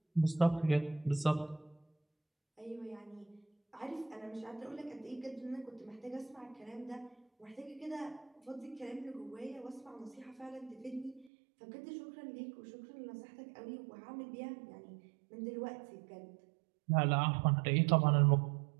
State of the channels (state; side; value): drops out; left; at 11.3 s